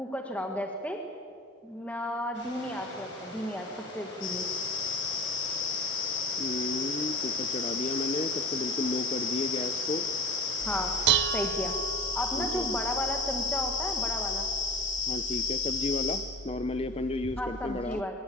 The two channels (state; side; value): normal; both; correlation 0.36